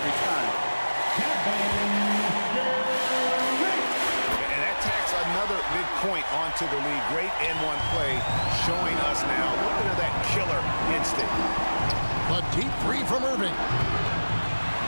time. And that tacks another big point onto the league. Great N1 play showing us now a little bit of that killer instinct. A deep 3 from Irving.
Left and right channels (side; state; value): both; inverted; correlation -1.00